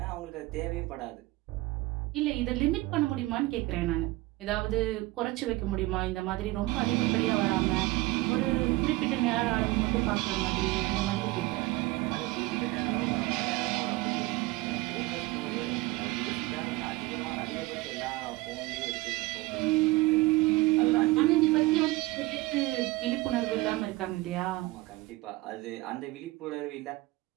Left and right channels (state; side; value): quieter; left; 20.2 dB